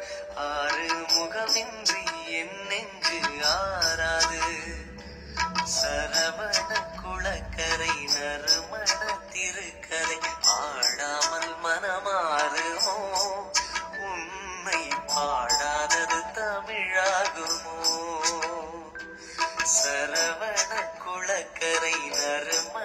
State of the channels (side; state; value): both; identical; correlation 1.00